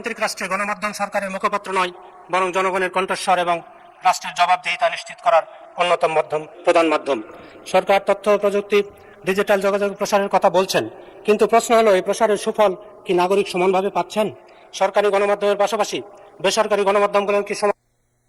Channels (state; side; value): identical; both; correlation 1.00